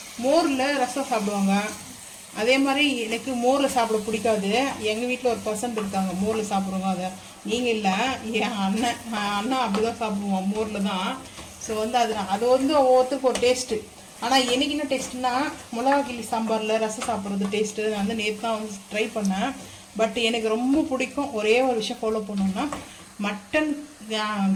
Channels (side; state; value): both; identical; correlation 1.00